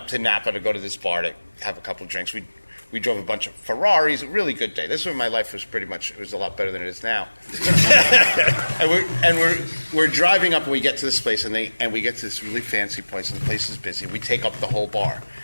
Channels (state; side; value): inverted; both; correlation -1.00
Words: to Napa to go to this bar to have a couple of drinks. We drove a bunch of Ferraris. A really good day. This is when my life was it was a lot better than it is now. and we're driving up, and we get to this place, and we get to this really fancy place, and the place is busy. We take up the whole bar.